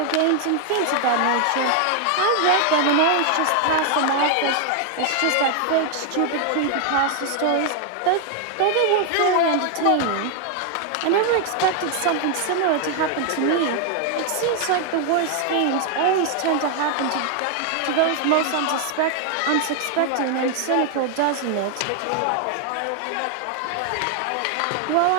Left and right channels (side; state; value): both; different; correlation 0.00